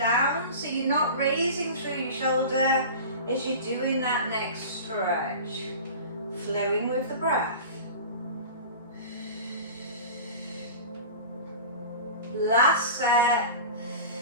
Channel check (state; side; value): inverted; both; correlation -0.35